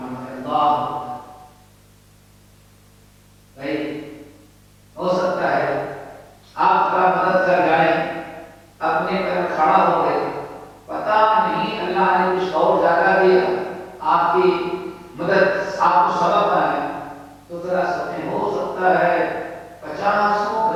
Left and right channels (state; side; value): identical; both; correlation 1.00